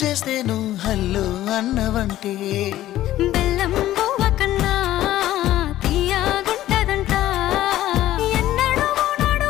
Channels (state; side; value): quieter; right; 14.0 dB